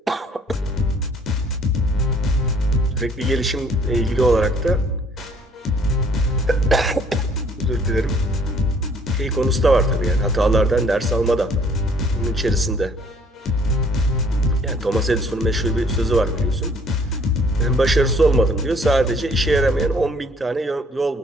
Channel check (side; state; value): both; normal; correlation 0.59